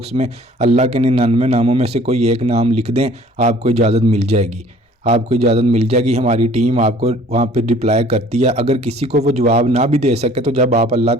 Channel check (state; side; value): normal; both; correlation 0.53